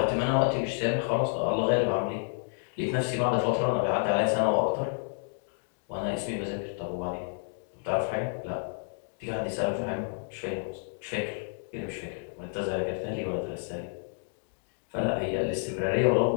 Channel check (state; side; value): silent; right; digital silence